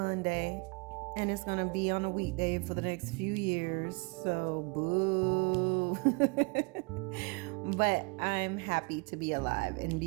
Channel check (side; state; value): left; quieter; 31.1 dB